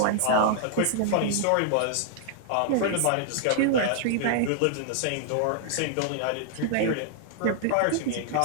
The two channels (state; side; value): different; both; correlation -0.01